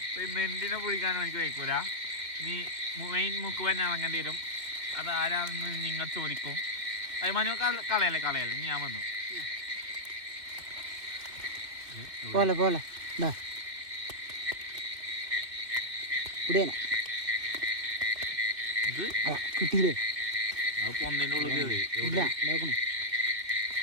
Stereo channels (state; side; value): late; left; 2.4 ms